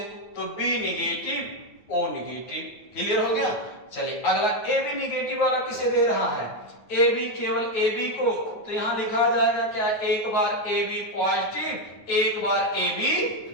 तो B negative O negative. Clear हो गया? चलिए अगला ए बी निगेटिव वाला किसे दे रहा है, ए बी, केवल ए बी को, तो यहां लिखा जाएगा क्या, एक बार ए बी पॉजिटिव, एक बार ए बी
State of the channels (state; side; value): late; right; 9.3 ms